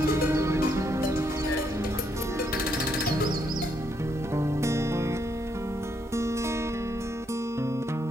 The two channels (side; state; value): both; normal; correlation 0.75